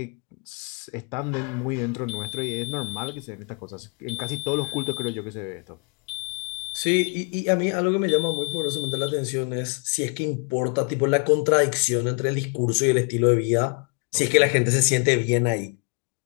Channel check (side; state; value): right; quieter; 35.4 dB